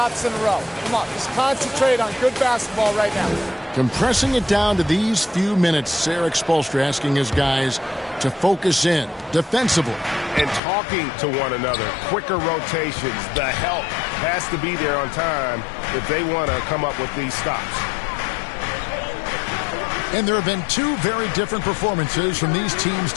in a row. Come on, just concentrate on good basketball right now. Compressing it down to these few minutes, Eric Spoelstra asking his guys to focus in defensively. And talking to one another, quicker rotations, the help has to be there on time if they want to come up with these stops. And there have been 2 very different performances from these teams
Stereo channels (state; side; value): drops out; right; at 10.6 s